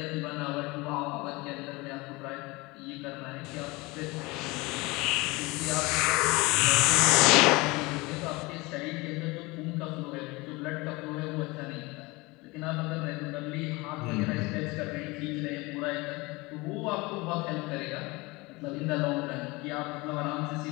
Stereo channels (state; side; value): quieter; right; 23.6 dB